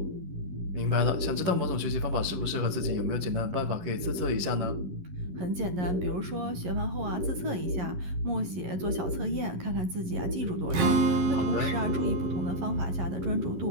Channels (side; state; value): left; late; 11 ms